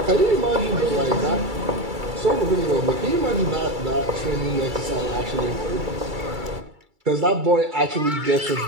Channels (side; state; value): left; late; 2.3 ms